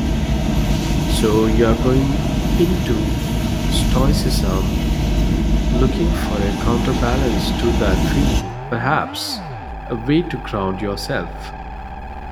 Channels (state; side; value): identical; both; correlation 1.00